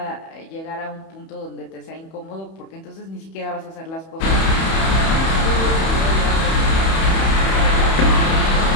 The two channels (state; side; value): late; right; 31 ms